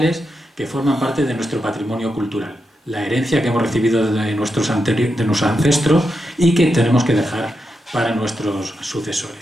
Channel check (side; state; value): both; normal; correlation 0.86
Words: que forman parte de nuestro patrimonio cultural, la herencia que hemos recibido de nuestros ancestros y que tenemos que dejar para nuestros